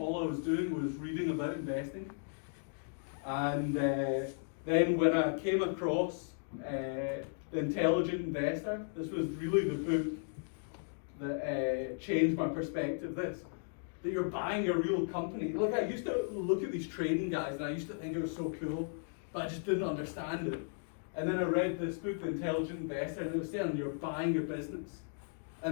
I was doing was reading about investing. And then when I came across The Intelligent Investor, this was really the book that changed my perspective. That you're buying a real company. Like, I used to look at these trading guys and I used to think it was so cool, but I just didn't understand it. And then I read this book, The Intelligent Investor, and it was saying you're buying a business.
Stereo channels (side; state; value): right; silent; digital silence